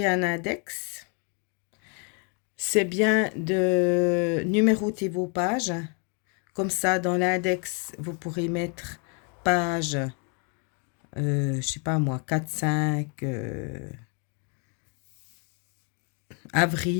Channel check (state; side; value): quieter; right; 37.5 dB